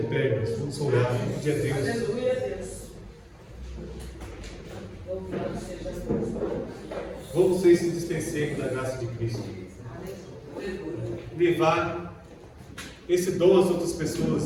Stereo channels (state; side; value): identical; both; correlation 1.00